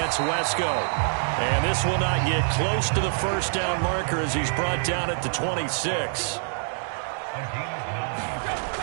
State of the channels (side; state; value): left; silent; 61 dB below the other